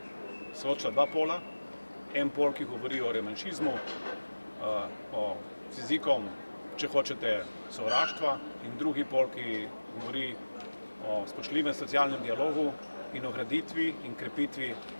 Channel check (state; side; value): inverted; both; correlation -1.00